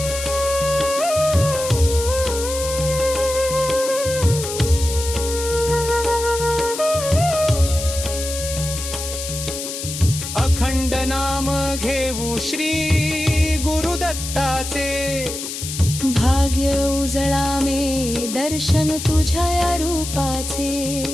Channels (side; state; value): left; noise; hiss, 7 dB below the sound